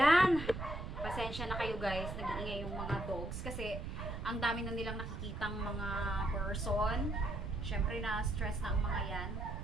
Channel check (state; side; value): noise; right; rumble, 6 dB below the sound